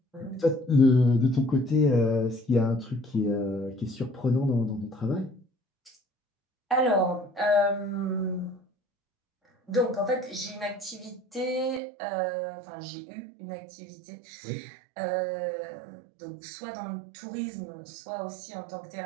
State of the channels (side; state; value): left; drops out; at 11.8 s